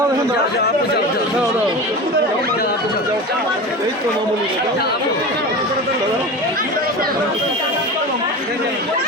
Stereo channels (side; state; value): both; normal; correlation 0.29